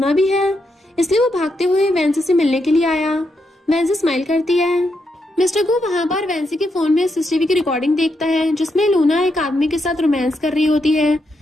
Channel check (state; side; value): normal; both; correlation 0.81